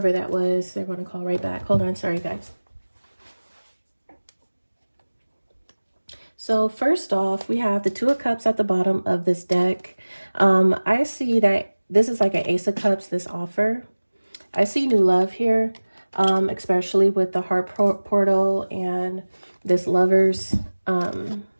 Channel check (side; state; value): both; inverted; correlation -1.00